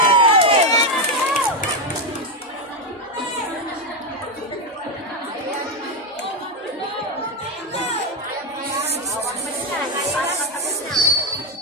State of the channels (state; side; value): normal; both; correlation 0.07